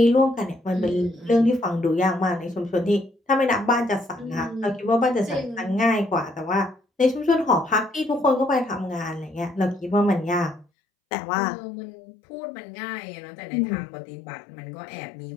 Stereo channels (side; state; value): right; drops out; at 10.7 s